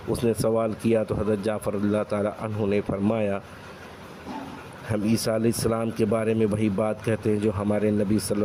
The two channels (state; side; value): identical; both; correlation 1.00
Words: اس نے سوال کیا تو حضرت جعفر رضی اللہ تعالیٰ عنہ نے فرمایا، ہم عیسیٰ علیہ السلام کے بارے میں وہی بات کہتے ہیں جو ہمارے نبی صلی